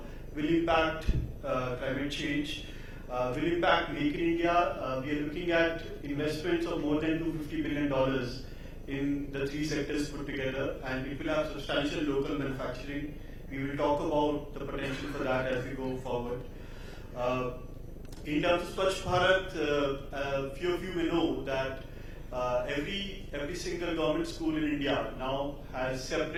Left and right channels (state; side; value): identical; both; correlation 1.00